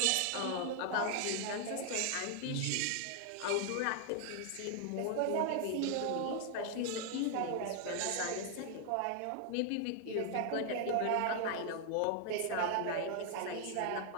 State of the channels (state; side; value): different; both; correlation 0.00